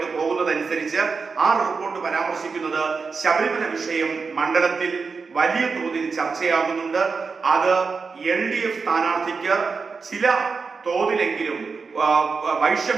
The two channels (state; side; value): quieter; left; 4.9 dB